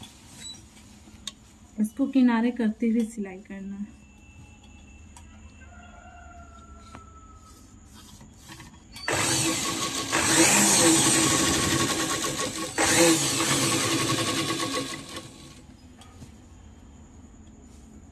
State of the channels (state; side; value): identical; both; correlation 1.00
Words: इसको किनारे करते हुए सिलाई करना है।